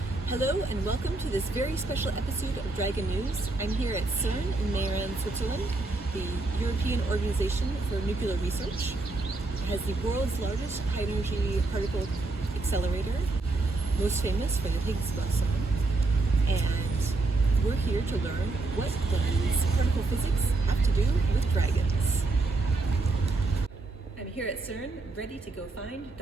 Hello and welcome to this very special episode of Dragon News. I'm here at CERN in Mayran, Switzerland, the European Organization for Nuclear Research. It has the world's largest high-energy particle accelerator, most famous for the Higgs boson. And we're here to learn what does particle physics have to do with dragons. I'm here at CERN, ready to go find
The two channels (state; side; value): quieter; left; 3.3 dB